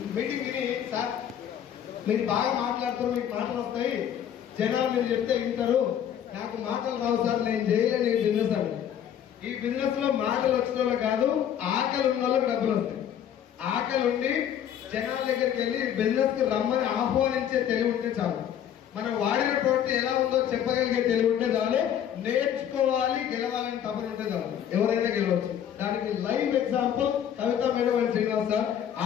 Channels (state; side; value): quieter; right; 9.7 dB